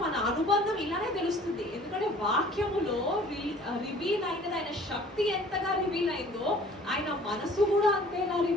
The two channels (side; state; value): both; normal; correlation 0.51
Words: మన అనుబంధం ఇలానే తెలుస్తుంది. ఎందుకంటే వాక్యములో రివీల్ అయినది, ఆయన శక్తి ఎంతగా రివీల్ అయిందో ఆయన మనసు కూడా అంతేగా